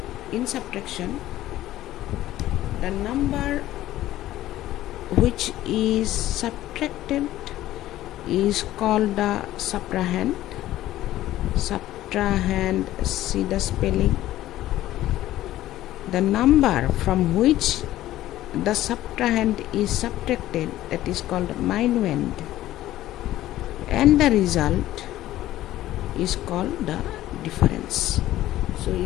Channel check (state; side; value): quieter; right; 14.5 dB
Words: in subtraction the number which is subtracted is called the subtrahend. Subtrahend, see the spelling. The number from which the subtrahend is subtracted, that is called minuend, and the result is called the difference. So